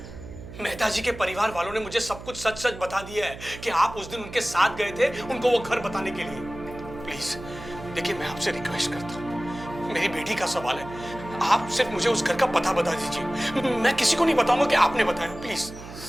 मेहता जी के परिवार वालों ने मुझे सब कुछ सच सच बता दिया है कि आप उस दिन उनके साथ गए थे उनको वो घर बताने के लिए। प्लीज देखिए, मैं आपसे रिक्वेस्ट करता हूँ, मेरी बेटी का सवाल है, आप सिर्फ मुझे उस घर का पता बता दीजिए। मैं किसी को नहीं बताऊंगा कि आपने बताया। प्लीज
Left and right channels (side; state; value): right; noise; hum, 13 dB below the sound